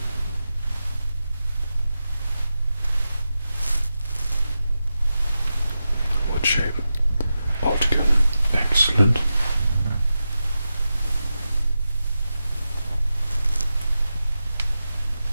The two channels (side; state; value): both; inverted; correlation -0.91